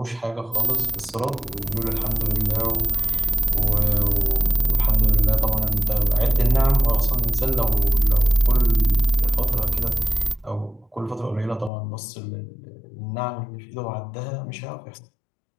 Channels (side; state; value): right; drops out; at 11.7 s